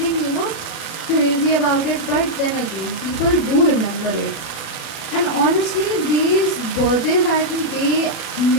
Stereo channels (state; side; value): late; right; 36 ms